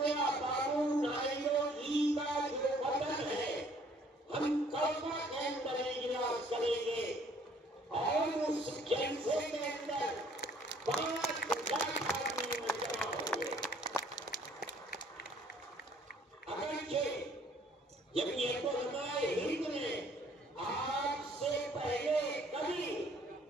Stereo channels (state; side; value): normal; both; correlation 0.59